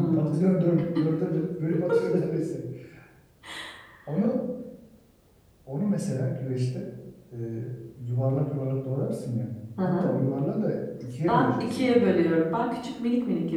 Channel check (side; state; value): both; identical; correlation 1.00